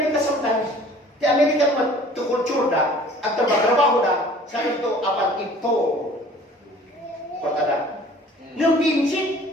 sometimes, the American matukulture da, at trabaho da, sa ito, apan ito, Cortala. Nung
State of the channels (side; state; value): both; normal; correlation 0.50